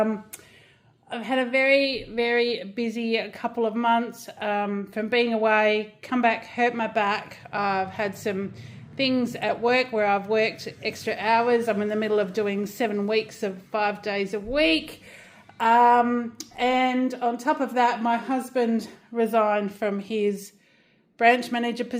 had a very, very busy couple of months from being away, come back, hurt my back. I've had some things at work where I've worked extra hours. I'm in the middle of doing 7 weeks of 5 days a week. And on top of that, my husband resigned from his branch manager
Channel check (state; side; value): identical; both; correlation 1.00